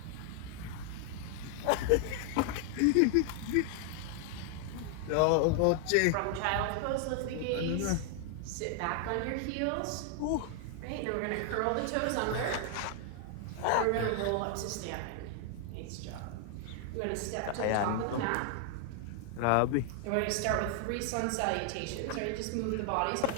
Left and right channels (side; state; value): both; different; correlation 0.00